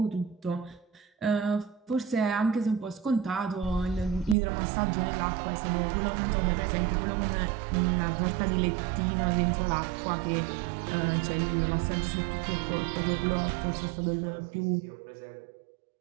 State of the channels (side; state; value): left; drops out; at 4.4 s